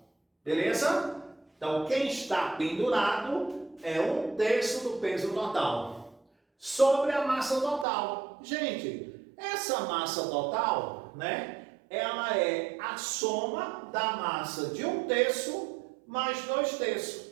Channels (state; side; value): drops out; left; at 7.9 s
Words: Beleza? Então, quem está pendurado é 1/3 do peso total. Sobre a massa total. Gente, essa massa total, né? Ela é a soma da massa de 1/3 mais